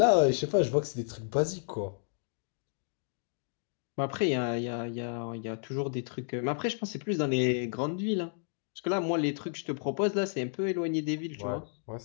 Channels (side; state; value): right; silent; digital silence